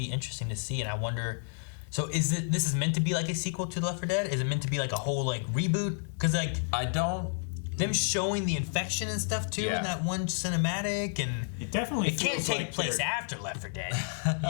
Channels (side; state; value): right; silent; digital silence